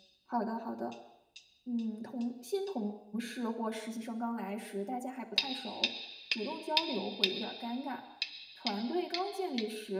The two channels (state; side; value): identical; both; correlation 1.00